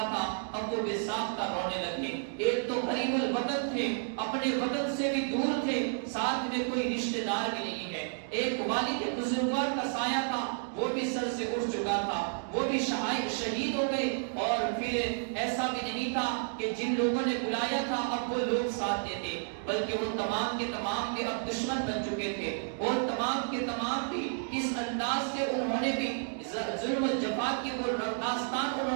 تھا، اب وہ بے ساختہ رونے لگے۔ ایک تو غریب الوطن تھے، اپنے وطن سے بھی دور تھے، ساتھ میں کوئی رشتہ دار بھی نہیں ہے۔ ایک والد بزرگوار کا سایہ تھا، وہ بھی سر سے اٹھ چکا تھا، وہ بھی شہید ہو گئے، اور پھر ایسا بھی نہیں تھا کہ جن لوگوں نے بلایا تھا اب وہ لوگ ساتھ دیتے، بلکہ وہ تمام کے تمام کے اب دشمن بن چکے تھے، اور تمام کے تمام بھی اس انداز سے انہوں نے بھی ظلم و جفا کی وہ داستان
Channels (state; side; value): silent; left; digital silence